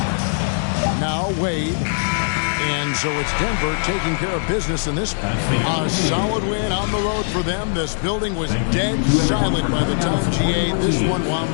Now Wade. And so it's Denver taking care of business in this one. A solid win on the road for them. This building was dead silent by the time GA this one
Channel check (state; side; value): silent; right; digital silence